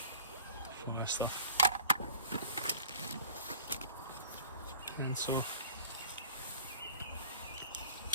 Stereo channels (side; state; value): both; inverted; correlation -0.47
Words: fire stuff, pencil,